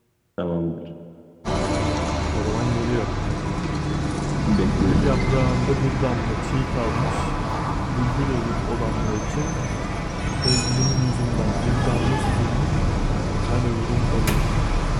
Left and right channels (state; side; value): identical; both; correlation 1.00